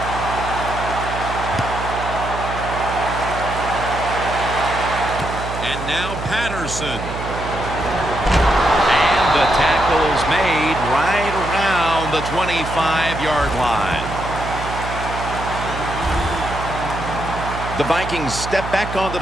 And now Patterson. And the tackle's made right around the 25-yard line. The Vikings step back onto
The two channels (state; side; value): noise; right; hum, 7 dB below the sound